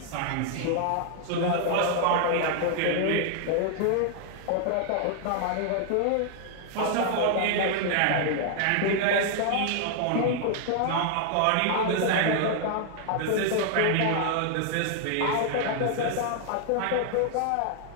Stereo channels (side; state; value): both; different; correlation 0.00